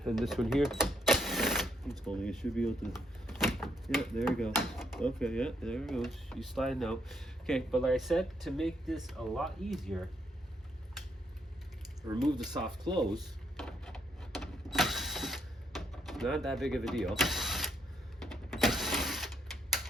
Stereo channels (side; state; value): both; normal; correlation 0.74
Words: and this one here. It's holding. It should be able to. Yeah, there you go. Okay, yeah, there it goes. You slide now. Okay, but like I said, to make this a lot easier, remove the soft close. Not that big of a deal.